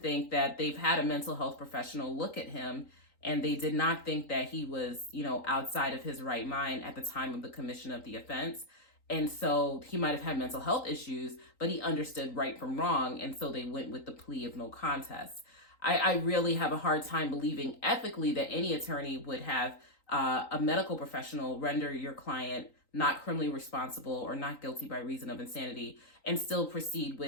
that they've had a mental health professional look at him and they did not think that he was, you know, outside of his right mind at the time of the commission of the offense. And so he might have had mental health issues, but he understood right from wrong. And so they went with the plea of no contest. I really have a hard time believing ethically that any attorney would have a medical professional render your client not criminally responsible or not guilty by reason of insanity and still proceed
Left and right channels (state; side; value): late; right; 3.9 ms